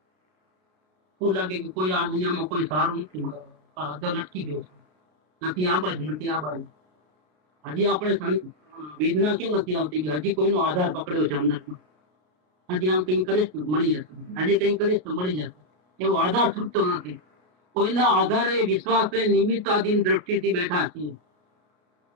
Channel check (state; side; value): late; left; 32 ms